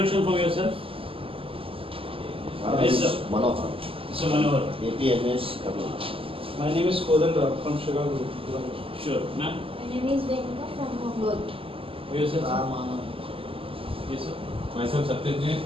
from yourself? Yes, sir. Manohar, Mr. Manohar. APMS, Kabul. My name is Kodanda from Chicago. Sure. Ma'am? My name is Venuka from Mongol. Yourself, sir? Ramana. Yes, sir. Myself Satyajit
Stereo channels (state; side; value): late; left; 0.26 ms